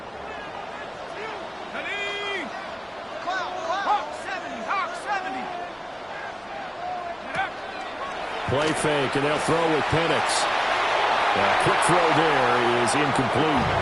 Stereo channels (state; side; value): identical; both; correlation 1.00